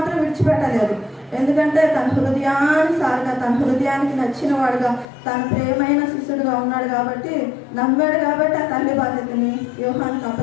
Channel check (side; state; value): right; drops out; at 5.1 s